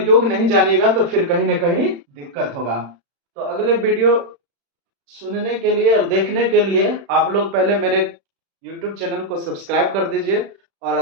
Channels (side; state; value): left; late; 36 ms